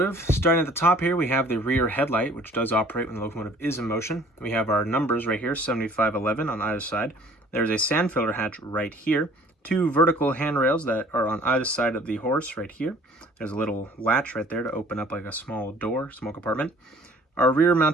starting at the top here, we have the rear headlight, which does operate when the locomotive is in motion. We have our numbers right here, 7511 on either side. There's a sand filler hatch right here. Two vertical handrails that are on either side of the horse right here. There's a little latch right there to open up like a small door, small compartment. Our rear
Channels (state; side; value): normal; both; correlation 0.53